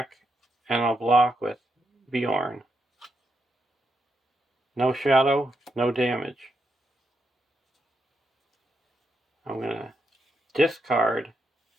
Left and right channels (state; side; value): normal; both; correlation 0.81